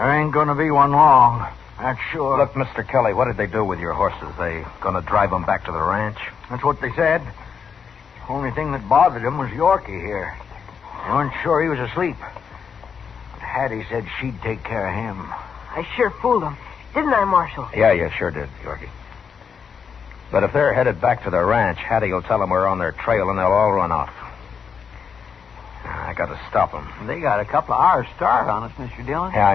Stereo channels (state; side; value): quieter; right; 6.6 dB